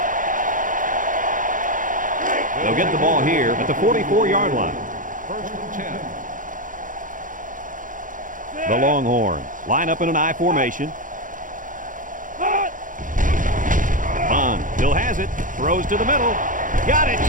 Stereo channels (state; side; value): late; left; 0.38 ms